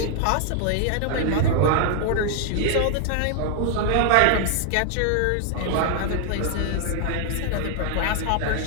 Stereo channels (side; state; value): both; different; correlation 0.00